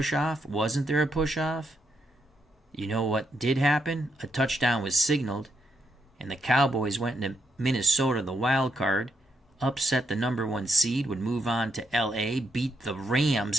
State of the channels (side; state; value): both; normal; correlation 0.79